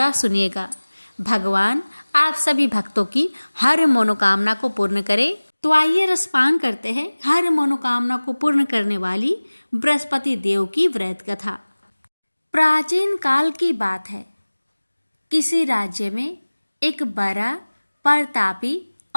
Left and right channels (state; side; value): inverted; both; correlation -1.00